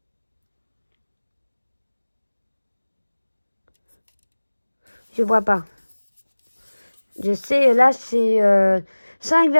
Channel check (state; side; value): inverted; both; correlation -1.00